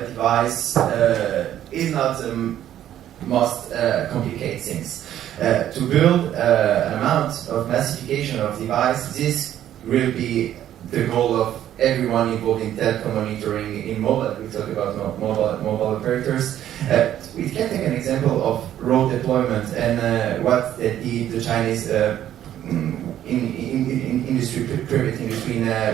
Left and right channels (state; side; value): quieter; left; 11.5 dB